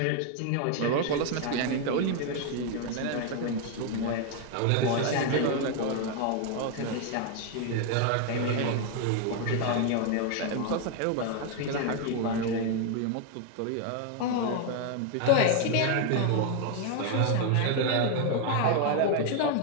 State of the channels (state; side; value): different; both; correlation 0.01